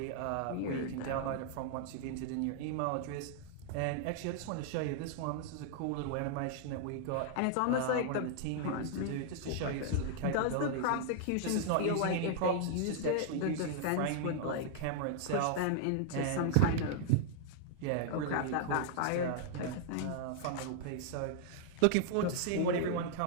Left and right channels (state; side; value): different; both; correlation -0.01